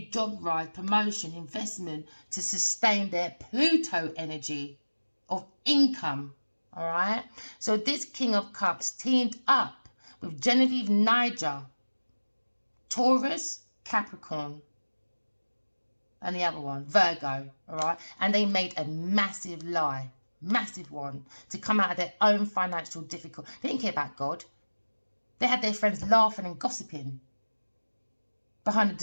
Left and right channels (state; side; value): inverted; both; correlation -1.00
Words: job rise, promotion, investment to sustain their Pluto energy of income. All right. So this King of Cups teamed up with Genevieve Niger, Taurus, Capricorn, and the other one, Virgo. All right. And they made a massive lie, massive one, to come out of their own financial difficulty. They didn't care about God. They had their friends laughing and gossiping behind the